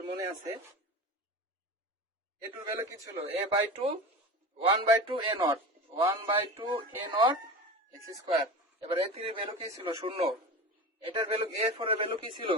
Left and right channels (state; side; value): normal; both; correlation 0.29